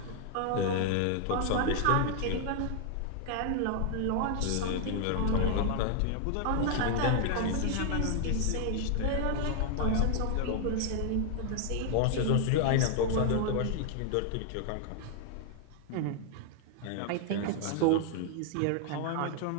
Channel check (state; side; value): different; both; correlation 0.00